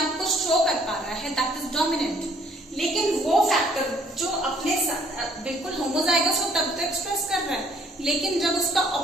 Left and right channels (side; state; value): both; normal; correlation 0.62